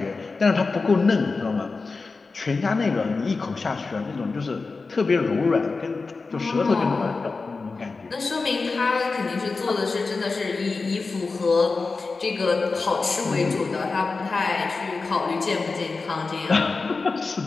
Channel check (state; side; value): quieter; right; 4.1 dB